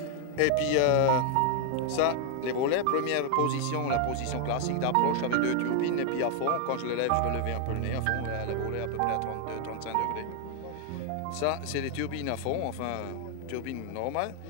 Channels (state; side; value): different; both; correlation 0.00